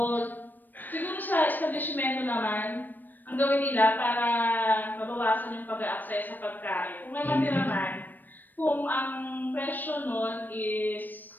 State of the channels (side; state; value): right; late; 0.090 ms